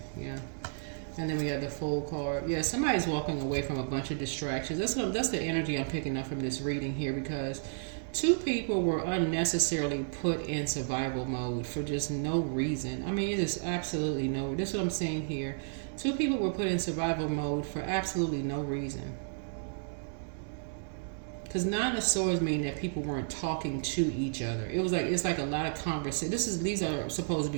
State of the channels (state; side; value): silent; left; digital silence